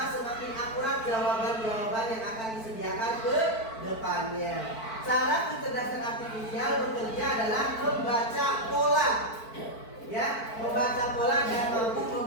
semakin akurat jawaban-jawaban yang akan disediakan ke depannya. Cara kecerdasan artifisial bekerja adalah membaca pola, ya, membaca pola dan mampu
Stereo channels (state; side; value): late; right; 4.5 ms